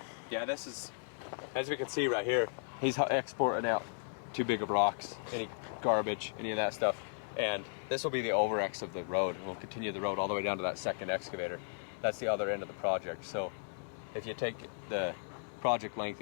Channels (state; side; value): silent; right; digital silence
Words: yeah, this is, as we can see right here, he's exporting out too big of rocks, any garbage, any of that stuff, and this will be the over-X of the road. We'll continue the road all the way down to that second excavator. That's the other end of the project. So if you take the project length,